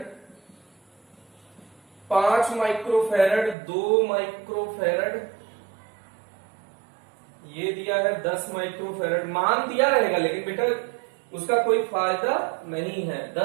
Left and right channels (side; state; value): left; drops out; at 3.6 s